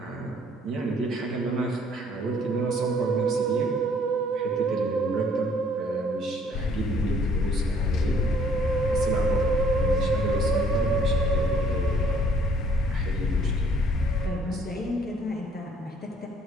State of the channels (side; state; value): both; normal; correlation 0.60